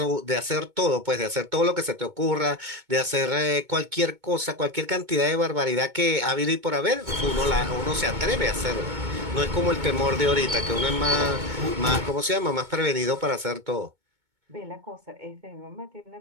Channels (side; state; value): left; late; 2.2 ms